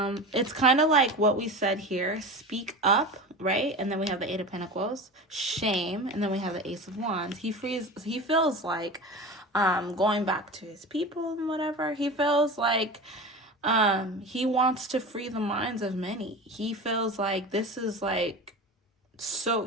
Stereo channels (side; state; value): both; normal; correlation 0.30